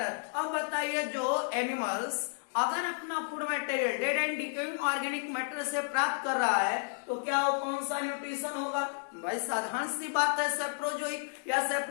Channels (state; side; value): silent; right; digital silence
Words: अब बताइए, जो एनिमल्स अगर अपना food material dead and decaying organic matter से प्राप्त कर रहा है, तो क्या वो कौन सा न्यूट्रिशन होगा भाई, साधारण सी बात है, सैप्रोजोइक या